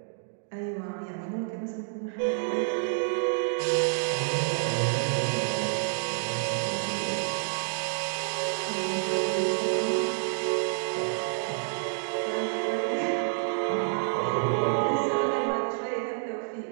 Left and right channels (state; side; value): silent; left; digital silence